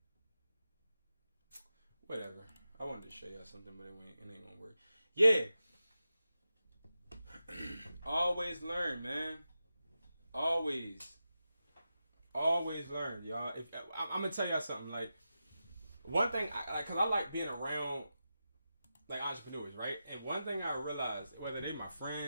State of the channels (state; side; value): inverted; both; correlation -0.90